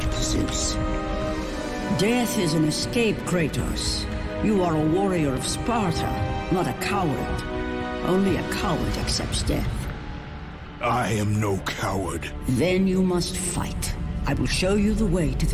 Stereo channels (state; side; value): identical; both; correlation 1.00